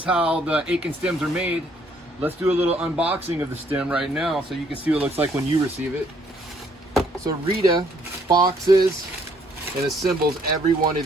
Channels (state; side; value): normal; both; correlation 0.66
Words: how the Aitken stems are made, let's do a little unboxing of the stem right now so you can see what it looks like when you receive it. So Rita boxes and assembles every one